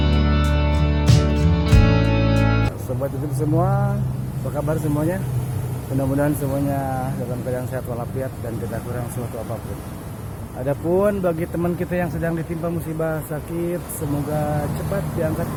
Sobat YouTube semua, apa kabar semuanya? Mudah-mudahan semuanya dalam keadaan sehat walafiat dan tidak kurang suatu apapun. Adapun bagi teman kita yang sedang ditimpa musibah sakit, semoga cepat diangkat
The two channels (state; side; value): identical; both; correlation 1.00